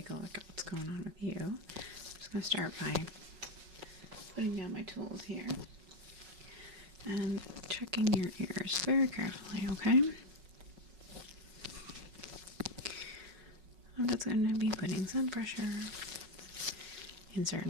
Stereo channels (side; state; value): left; late; 5.4 ms